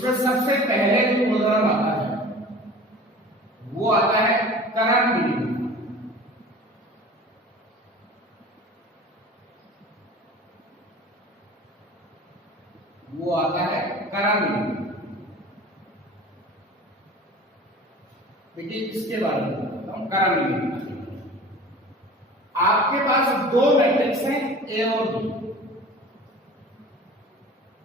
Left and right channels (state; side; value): normal; both; correlation 0.41